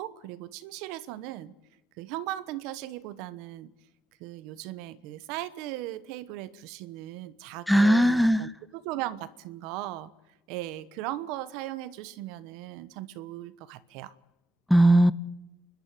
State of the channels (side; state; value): both; normal; correlation 0.87